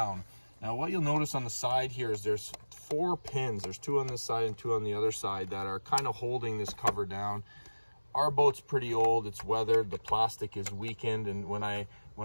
Now what you'll notice on the side here is there's 4 pins. There's 2 on this side and 2 on the other side that are kind of holding this cover down. Our boat's pretty old, it's weathered, the plastic is weakened, and when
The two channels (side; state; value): both; inverted; correlation -1.00